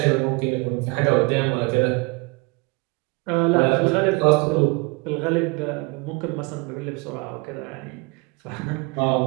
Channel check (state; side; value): quieter; left; 28.4 dB